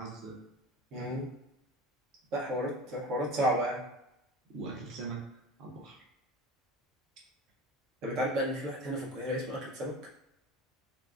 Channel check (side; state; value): both; normal; correlation 0.34